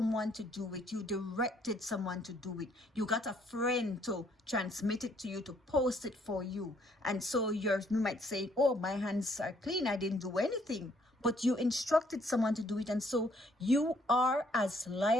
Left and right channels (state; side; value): normal; both; correlation 0.66